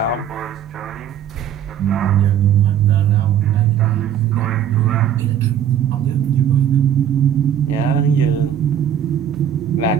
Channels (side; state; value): left; quieter; 9.5 dB